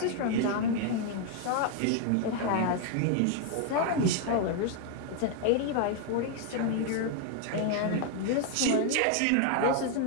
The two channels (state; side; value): different; both; correlation 0.00